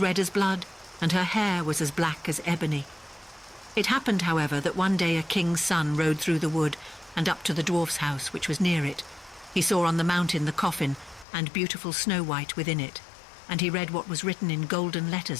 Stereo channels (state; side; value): drops out; right; at 11.2 s